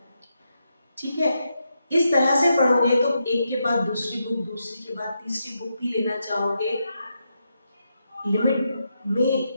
ठीक है, इस तरह से पढ़ोगे तो एक के बाद दूसरी बुक, दूसरी के बाद तीसरी बुक भी लेना चाहोगे लिमिट में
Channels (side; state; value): both; inverted; correlation -0.83